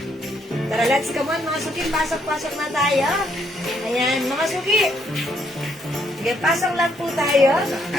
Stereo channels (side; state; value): both; normal; correlation 0.72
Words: Tara, let's come on mga suki. Pasok-pasok na tayo. Ayan, mga suki. Sige, pasok lang po tayo.